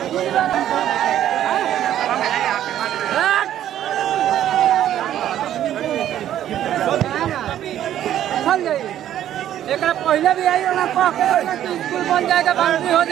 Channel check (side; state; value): left; quieter; 11.5 dB